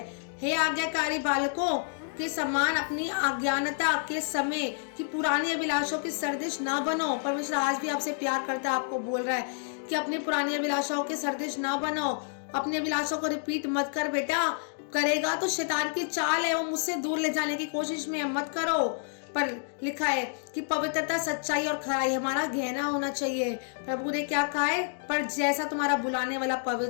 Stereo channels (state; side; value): silent; right; digital silence